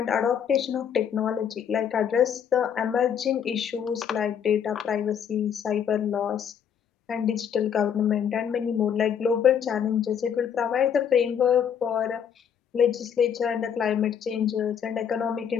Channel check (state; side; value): quieter; right; 8.1 dB